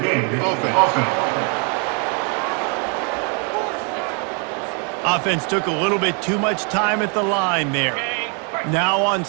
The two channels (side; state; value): left; quieter; 37.8 dB